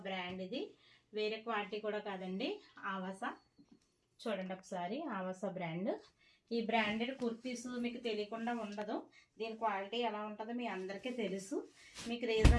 బ్రాండ్. ఇది వేరే క్వాలిటీ కూడా కాదండి, ఆవాస. చూడండి ఒకసారి, ఆవాస బ్రాండ్. ఈ బ్రాండెడ్ కుర్తీస్ మీకు తెలియకుండా ఉండదు. దీని క్వాలిటీ ఎలా ఉంటుందో మీ అందరికీ తెలుసు. మీకు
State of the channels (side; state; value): both; identical; correlation 1.00